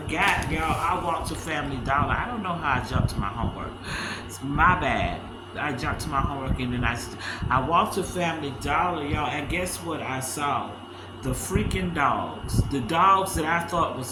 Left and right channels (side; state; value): both; identical; correlation 1.00